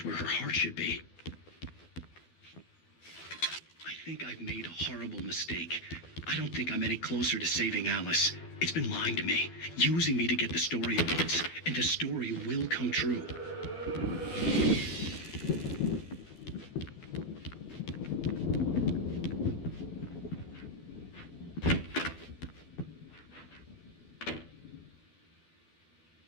where her heart should be. I think I've made a horrible mistake. I don't think I'm any closer to saving Alice. It's been lying to me, using me to get the story it wants, and the story will come true.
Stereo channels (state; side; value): late; right; 12 ms